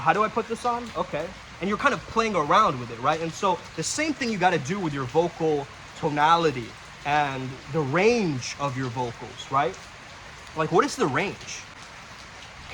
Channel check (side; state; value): both; identical; correlation 1.00